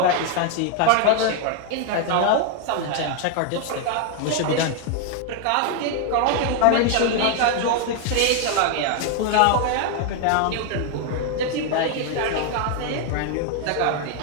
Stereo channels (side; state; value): both; different; correlation 0.00